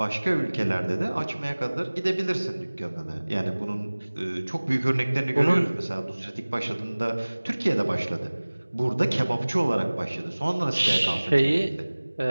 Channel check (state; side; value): inverted; both; correlation -1.00